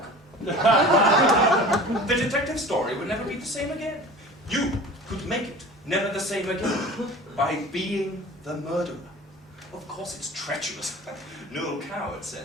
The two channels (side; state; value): both; normal; correlation 0.40